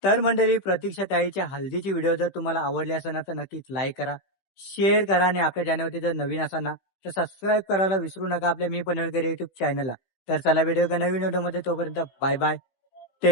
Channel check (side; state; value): right; late; 16 ms